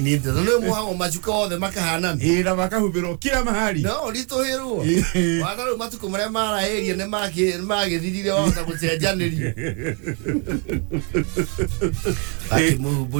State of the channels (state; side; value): quieter; left; 36.7 dB